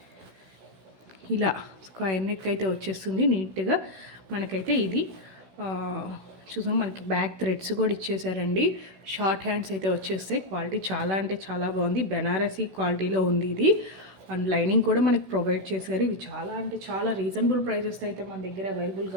ఇలా స్క్వేర్ నెక్ అయితే వచ్చేస్తుంది నీట్గా. మనకైతే ఇది చూసాం, మనకి బ్యాక్ థ్రెడ్స్ కూడా ఇచ్చేసారండి. షార్ట్ హ్యాండ్స్ అయితే వచ్చేస్తాయి. క్వాలిటీ చాలా బాగుంది. బెనారసీ క్వాలిటీలో ఉంది ఇది. అండ్ లైనింగ్ కూడా మనకి ప్రొవైడ్ చేశారు. ఇవి చాలా రీజనబుల్ ప్రైజెస్ అయితే మన దగ్గర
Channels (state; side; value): late; left; 16 ms